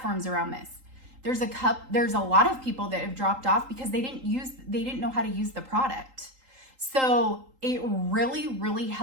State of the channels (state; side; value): late; left; 3.8 ms